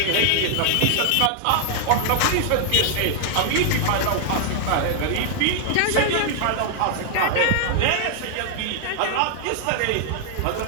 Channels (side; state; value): both; different; correlation 0.00